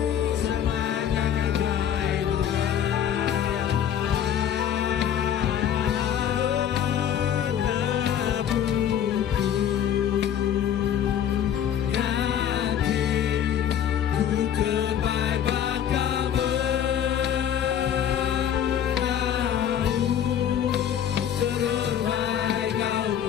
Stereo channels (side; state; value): right; quieter; 9.5 dB